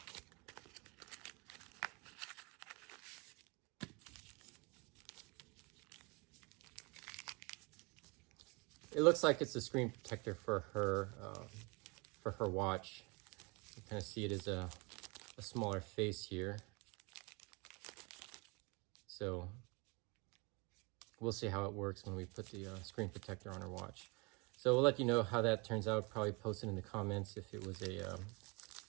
It looks like it's a screen protector for her watch. You kind of see it as a smaller face here. So we'll see how it works when we put the screen protector on our watch. So we'll let you know how that turns out. Probably post it in the comments if it was a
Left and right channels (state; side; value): quieter; left; 28.8 dB